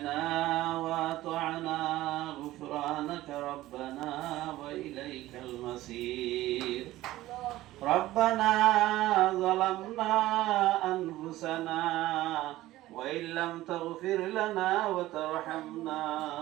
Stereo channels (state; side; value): quieter; left; 16.1 dB